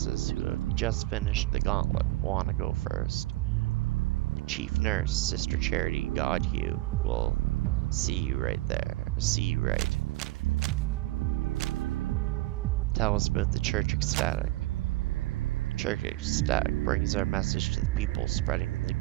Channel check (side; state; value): left; quieter; 19.0 dB